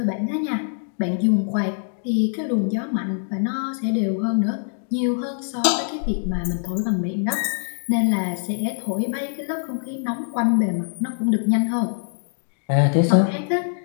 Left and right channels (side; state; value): right; silent; digital silence